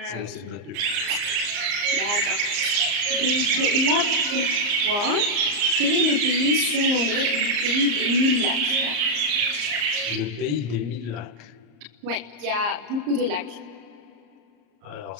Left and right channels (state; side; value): late; left; 34 ms